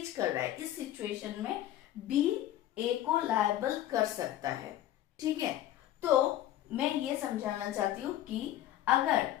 कर रहा है। इस सिचुएशन में बी ए को लायबल कर सकता है। ठीक है, तो मैं ये समझाना चाहती हूँ कि अगर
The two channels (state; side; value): quieter; right; 13.1 dB